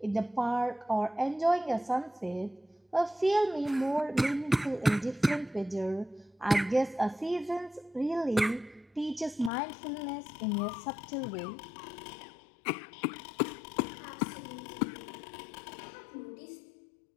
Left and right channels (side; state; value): right; drops out; at 9.5 s